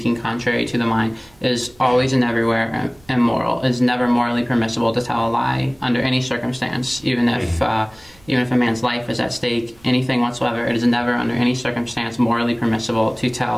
contrary to the mind, is always and everywhere immoral. It is never morally permissible to tell a lie under any circumstance, even if a man's life is at stake, anything whatsoever. It is never under any circumstance morally permissible to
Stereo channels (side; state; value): right; noise; rumble, 28 dB below the sound